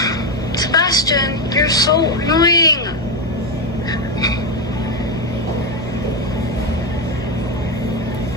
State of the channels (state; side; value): normal; both; correlation 0.10